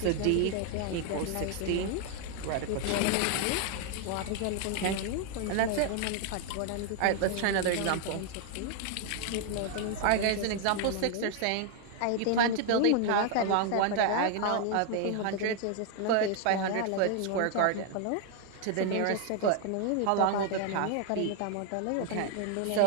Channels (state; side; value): different; both; correlation 0.00